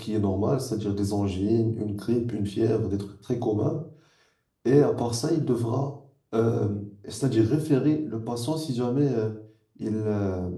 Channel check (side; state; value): both; identical; correlation 1.00